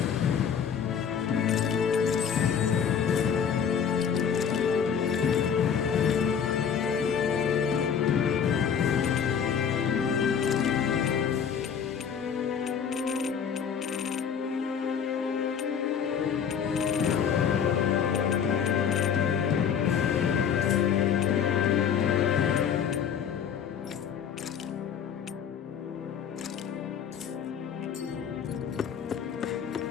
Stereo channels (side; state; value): right; quieter; 7.6 dB